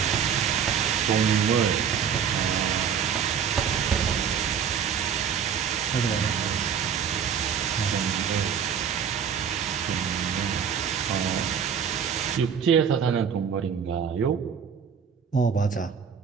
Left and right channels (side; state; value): left; quieter; 7.5 dB